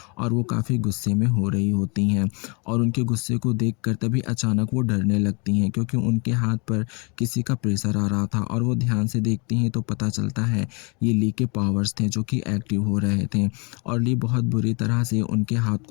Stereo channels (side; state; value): right; quieter; 32.3 dB